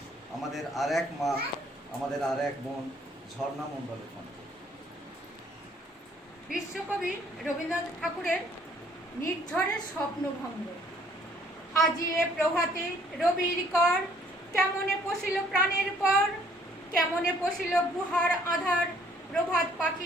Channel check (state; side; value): normal; both; correlation 0.61